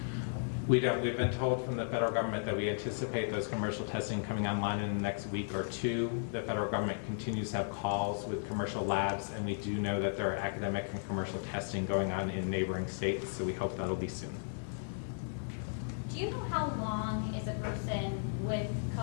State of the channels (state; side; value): silent; right; digital silence